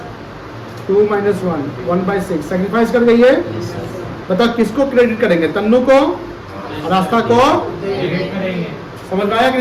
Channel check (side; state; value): both; identical; correlation 1.00